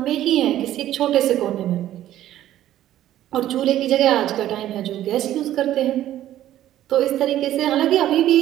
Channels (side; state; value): left; quieter; 12.9 dB